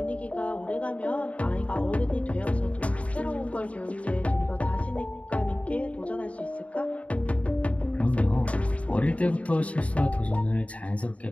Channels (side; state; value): right; late; 0.066 ms